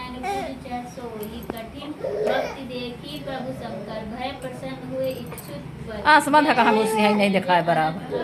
पूज सोई कठिन भक्ति देखी प्रभु शंकर भय प्रसन्न हुए इच्छुक आसमान का हम उसे नहीं देखा है बराबर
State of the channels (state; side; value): identical; both; correlation 1.00